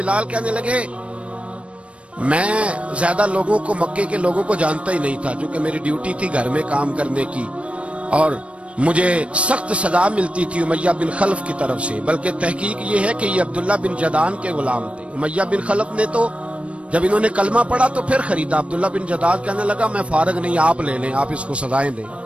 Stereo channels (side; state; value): left; late; 0.061 ms